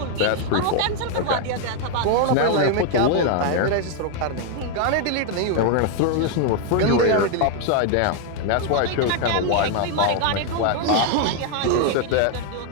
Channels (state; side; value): different; both; correlation 0.00